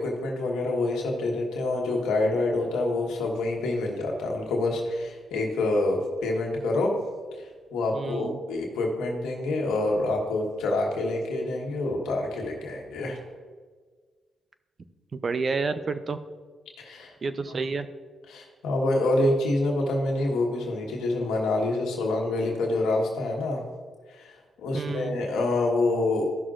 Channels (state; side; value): normal; both; correlation 0.81